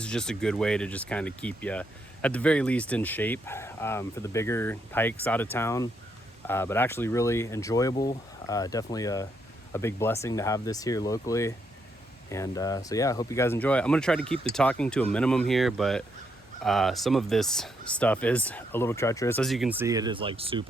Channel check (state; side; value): normal; both; correlation 0.77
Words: is just a good way to just kind of keep you at the very least in shape for the bigger hikes out of town, but actually really enjoyable. Definitely a big blessing to have this here locally. And so yeah, I hope you guys enjoy it. I'm gonna try to keep the talking to a minimum here, but some of this stuff is a little treacherous. As you can see, it is like